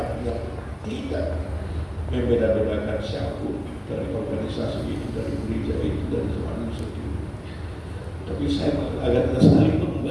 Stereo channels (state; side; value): identical; both; correlation 1.00